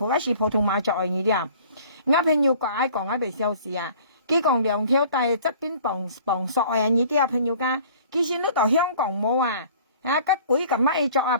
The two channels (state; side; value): inverted; both; correlation -0.50